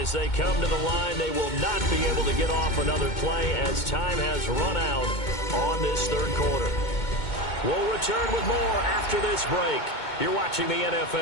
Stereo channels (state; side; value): late; right; 2.2 ms